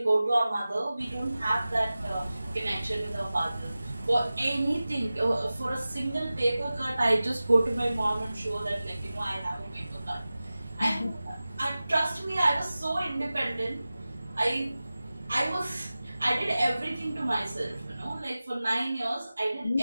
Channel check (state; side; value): inverted; both; correlation -0.96